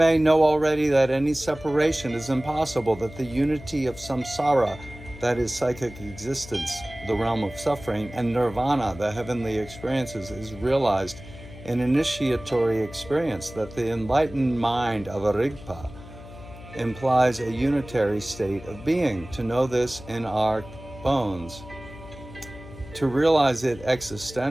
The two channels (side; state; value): left; noise; hum, 16 dB below the sound